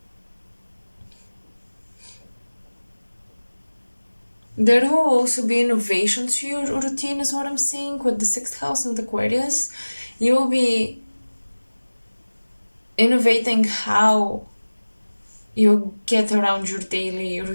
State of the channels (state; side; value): inverted; both; correlation -1.00